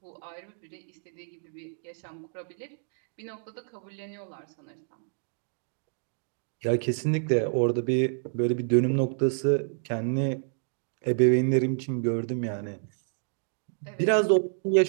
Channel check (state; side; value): silent; left; digital silence